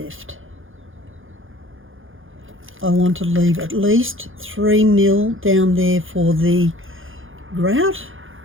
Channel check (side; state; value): left; late; 0.58 ms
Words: I want to leave at least 3mm down there for the grout,